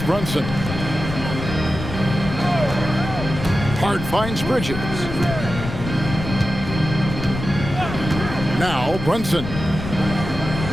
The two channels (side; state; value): left; noise; rumble, 7 dB below the sound